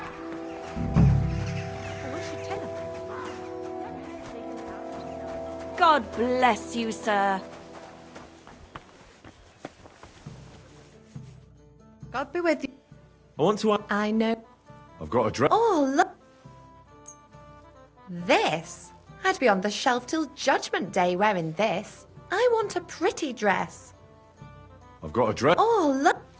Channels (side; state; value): both; identical; correlation 1.00